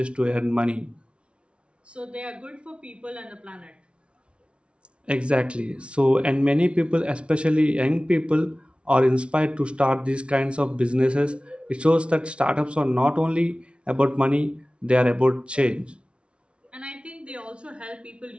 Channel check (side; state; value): left; late; 0.059 ms